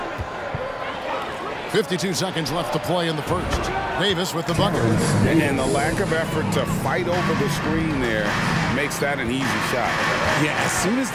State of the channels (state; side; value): identical; both; correlation 1.00